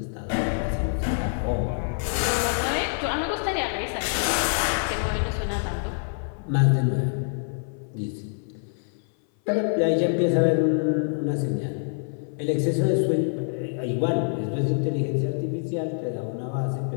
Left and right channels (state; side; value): silent; right; 58 dB below the other